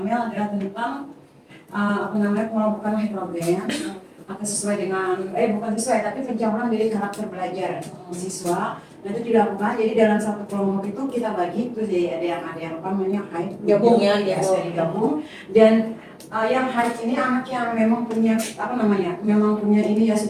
adalah tentang pengelompokan heterogen atau sesuai dengan bukan sesuai tapi pencampuran dari karakter belajar siswa. Nah itu dilakukan, jadi dalam satu kelompok itu kita bagi itu jadi ada yang apa namanya height Gabung ya, digabung. Dan yang height ini anak yang memang punya memang punya ini ya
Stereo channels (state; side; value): identical; both; correlation 1.00